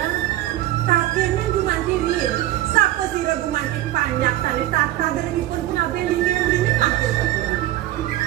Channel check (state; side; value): quieter; left; 14.5 dB